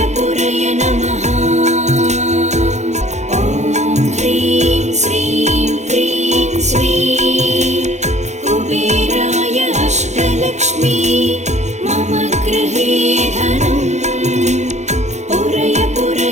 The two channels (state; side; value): late; left; 0.33 ms